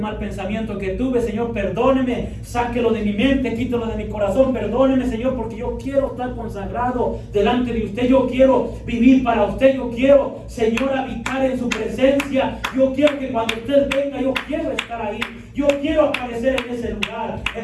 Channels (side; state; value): both; identical; correlation 1.00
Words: pensamiento que tuve, Señor, perdóneme, sáquelo de mi mente, quítelo de mi corazón, perdóneme, Señor, porque yo quiero estar consagrado delante de usted, yo quiero vivir para usted, yo quiero, Señor, habitar en su presencia, yo quiero que cuando usted venga, yo quiero estar ahí. yo quiero aparecer en ese lugar.